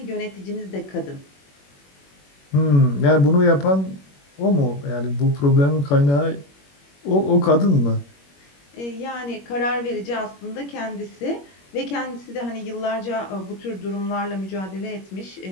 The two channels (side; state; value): right; late; 21 ms